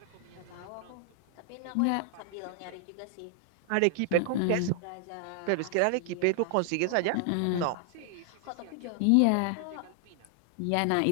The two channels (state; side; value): different; both; correlation 0.00